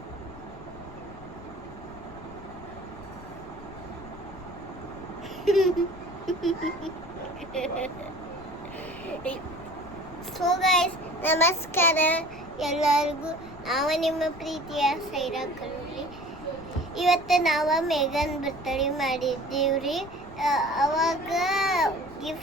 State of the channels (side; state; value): left; noise; rumble, 17 dB below the sound